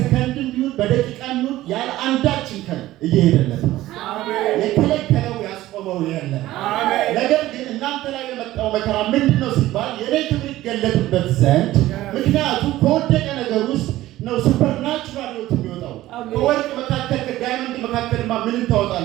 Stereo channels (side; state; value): left; quieter; 15.7 dB